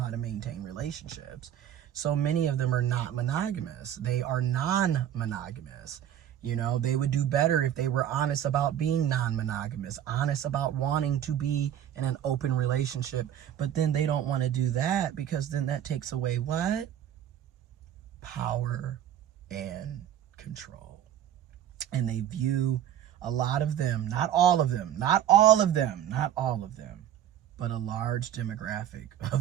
to maintain relationships. So many of them are not monogamous. They are non-monogamous. They would do better if they were honest about being non-monogamous, honest about wanting to be in an open relationship. But then they don't want to do that, because then that takes away what? Power and control. And they view, a lot of them, not all of them, but a large demographic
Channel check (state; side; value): quieter; left; 10.6 dB